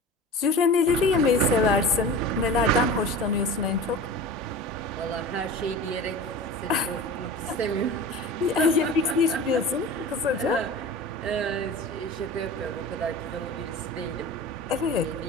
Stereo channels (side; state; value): both; normal; correlation 0.34